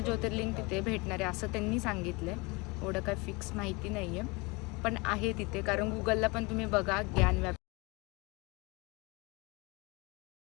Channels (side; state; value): right; quieter; 26.5 dB